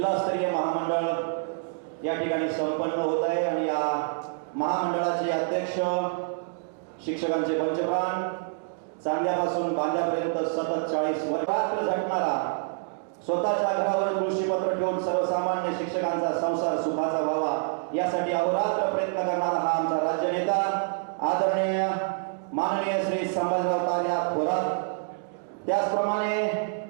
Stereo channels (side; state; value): left; silent; digital silence